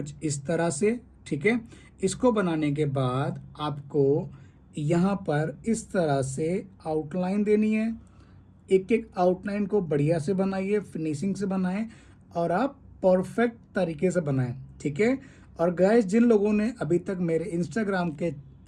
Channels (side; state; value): both; identical; correlation 1.00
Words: इस तरह से, ठीक है। इसको बनाने के बाद आपको यहाँ पर इस तरह से आउटलाइन देनी है। एक एक आउटलाइन को बढ़िया से बनाइए, फिनिशिंग से बनाएं और आप परफेक्ट तरीके से बनाएं, ठीक है। और गाइस, जिन लोगों ने अभी तक मेरे इंस्टाग्राम के